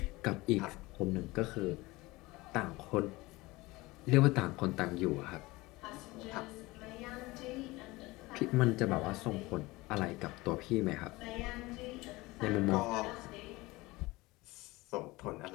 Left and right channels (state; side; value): quieter; right; 21.3 dB